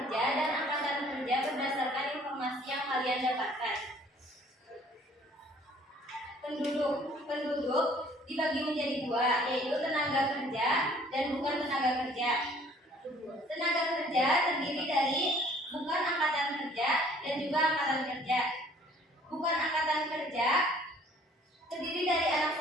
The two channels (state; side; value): normal; both; correlation 0.56